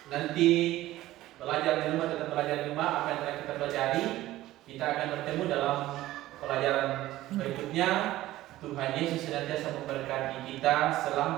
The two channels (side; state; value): left; quieter; 15.7 dB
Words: nanti belajar di rumah, tetap belajar di rumah apa yang telah kita pelajari. Kita akan bertemu dalam pelajaran berikutnya. Tuhan Yesus senantiasa memberkati kita.